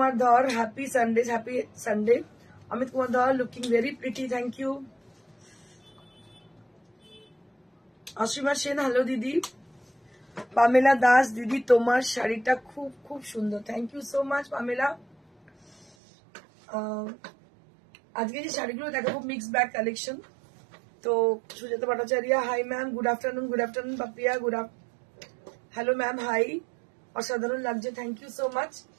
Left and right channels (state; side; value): drops out; left; at 15.9 s